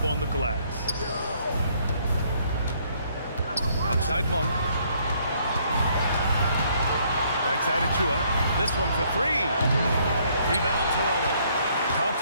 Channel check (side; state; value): both; inverted; correlation -0.66